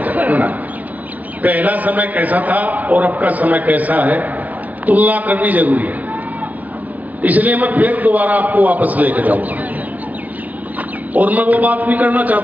जाओ ना, पहला समय कैसा था और अब का समय कैसा है, तुलना करनी जरूरी है। इसलिए मैं फिर दोबारा आपको वापस लेकर जाऊंगा और मैं वो बात नहीं करना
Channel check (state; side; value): late; left; 0.079 ms